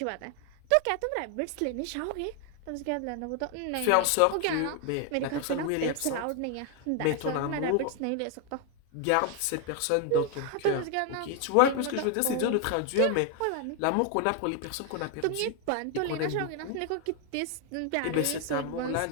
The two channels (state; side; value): different; both; correlation 0.00